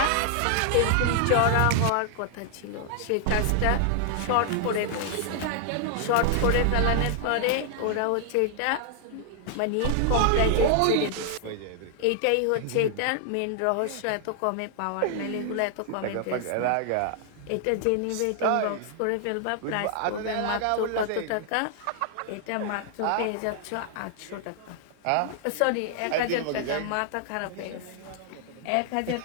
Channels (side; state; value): both; different; correlation 0.00